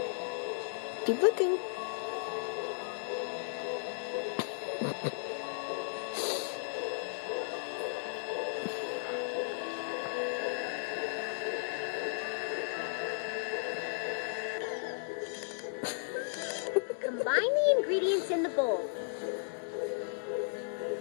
Keep looking. Combine the ingredients in the bowl.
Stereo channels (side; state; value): right; silent; digital silence